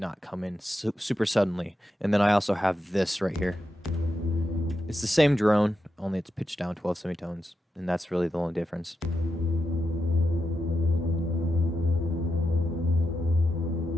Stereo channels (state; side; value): normal; both; correlation 0.87